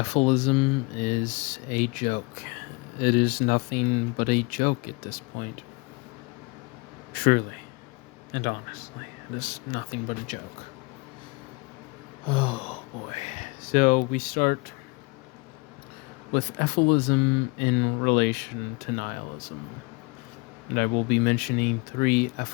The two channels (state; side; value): quieter; right; 28.4 dB